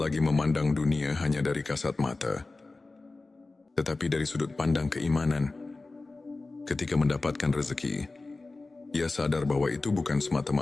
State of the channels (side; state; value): right; quieter; 3.4 dB